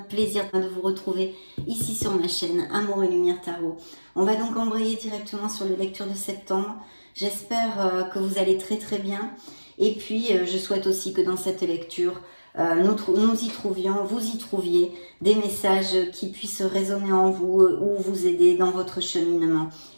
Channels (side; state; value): both; inverted; correlation -1.00